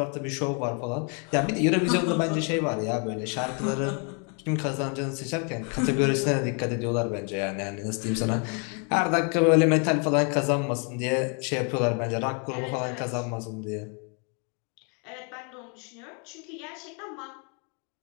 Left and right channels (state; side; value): quieter; right; 37.4 dB